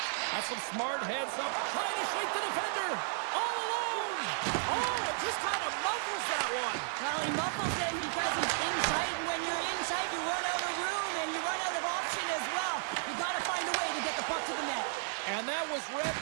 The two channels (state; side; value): silent; left; digital silence